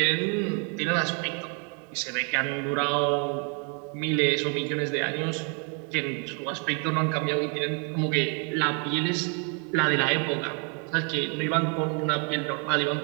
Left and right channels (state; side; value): quieter; left; 38.3 dB